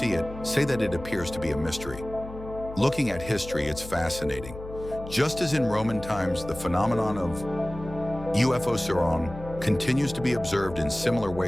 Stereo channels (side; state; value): left; noise; hum, 13 dB below the sound